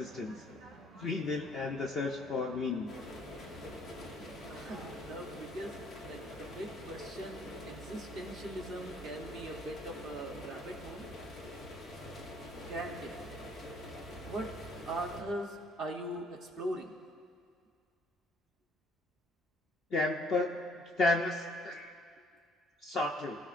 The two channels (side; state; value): both; normal; correlation 0.61